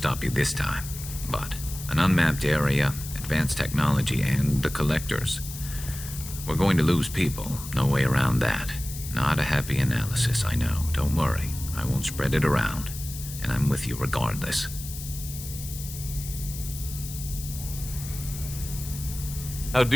you this time. But an unmapped area, advanced technology, and the Collectors. We're going to lose people. No way around that. Not a happy analysis, I know. Don't worry. I won't spread it around. And I'm with you regardless. How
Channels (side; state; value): left; noise; hiss, 11 dB below the sound